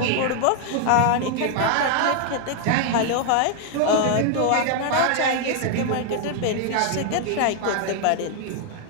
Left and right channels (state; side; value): different; both; correlation 0.00